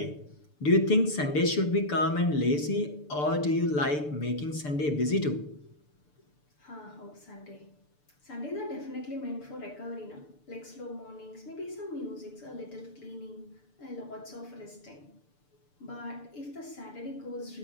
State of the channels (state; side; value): late; right; 6.8 ms